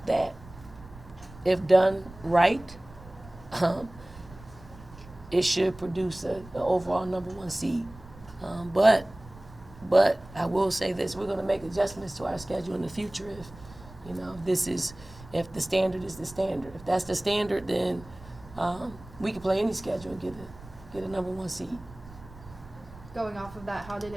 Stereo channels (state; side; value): noise; right; rumble, 19 dB below the sound